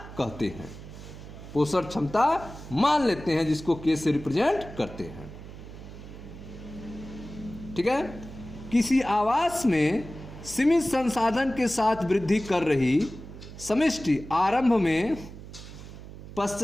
कहते हैं। पोषण क्षमता मान लेते हैं, जिसको के से रिप्रेजेंट करते हैं। ठीक है। किसी आवास में सीमित संसाधन के साथ वृद्धि कर रही समष्टि आरंभ में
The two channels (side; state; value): right; noise; hum, 14 dB below the sound